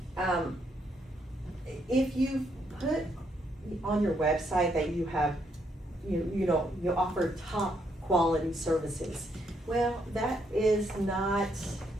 put on your website that you have, you offer top quality services, well, that's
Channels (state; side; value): normal; both; correlation 0.74